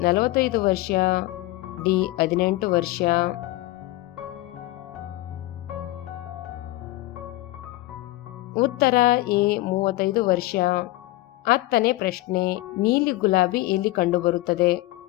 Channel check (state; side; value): quieter; right; 18.2 dB